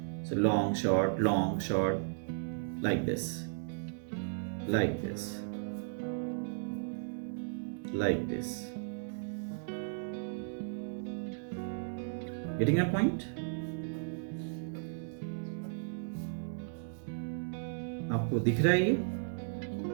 So long short, long short, like this, like this, like this. Getting a point? आपको दिख रहा है ये?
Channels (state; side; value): silent; left; digital silence